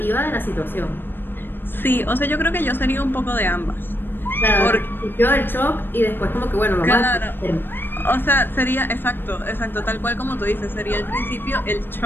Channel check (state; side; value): late; right; 0.097 ms